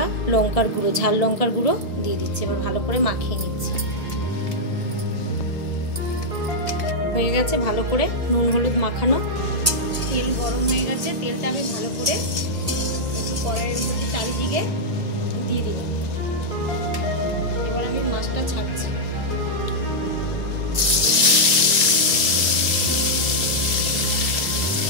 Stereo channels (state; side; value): late; right; 1.9 ms